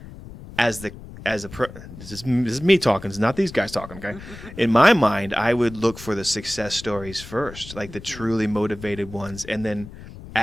this is me talking. It's not these guys talking, okay? In my mind, I would look for the success stories first, like the truly motivated ones. And then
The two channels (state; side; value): noise; left; rumble, 15 dB below the sound